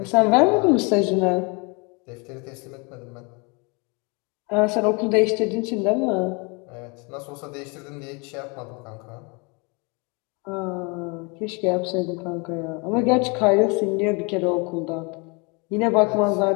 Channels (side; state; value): right; quieter; 30.8 dB